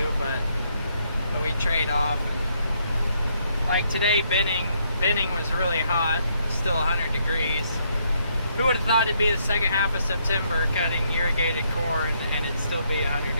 but we trade off. And like today, binning was really hot, still 100 degrees. Who would have thought it'd be the second half of September cutting irrigated corn and it'd still be 100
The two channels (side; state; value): both; inverted; correlation -0.73